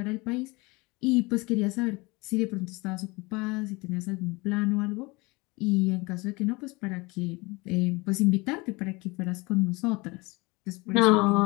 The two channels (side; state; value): right; quieter; 24.8 dB